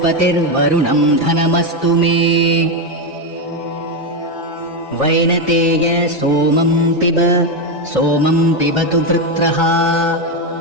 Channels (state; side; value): normal; both; correlation 0.08